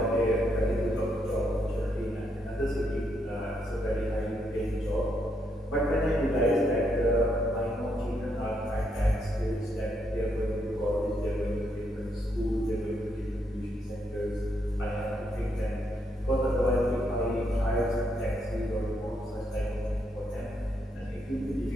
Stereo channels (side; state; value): both; normal; correlation 0.77